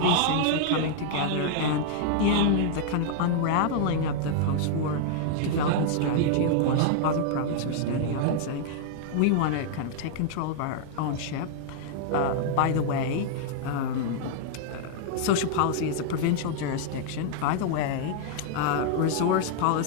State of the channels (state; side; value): different; both; correlation -0.01